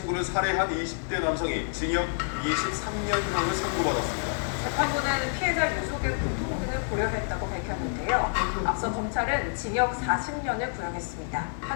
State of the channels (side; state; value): right; silent; 59 dB below the other